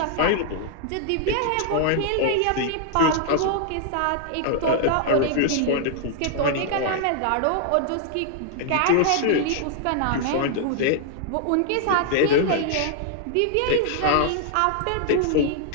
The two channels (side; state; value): both; different; correlation -0.01